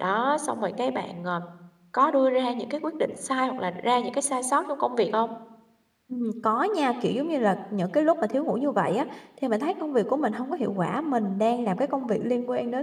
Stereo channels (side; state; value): both; identical; correlation 1.00